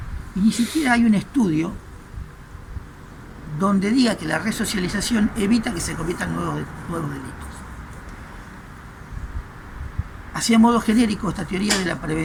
y ni siquiera hay un estudio donde diga que la resocialización evita que se cometan nuevos delitos. Así, a modo genérico, esta teoría de la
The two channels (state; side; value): identical; both; correlation 1.00